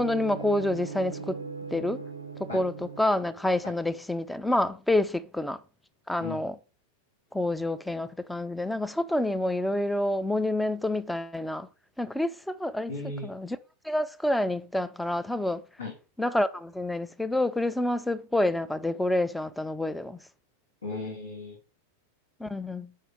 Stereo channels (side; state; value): both; normal; correlation 0.87